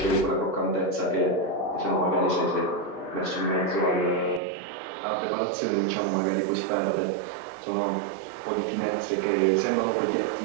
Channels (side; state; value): left; drops out; at 4.4 s